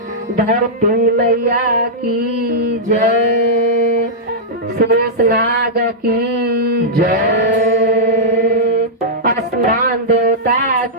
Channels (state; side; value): normal; both; correlation -0.10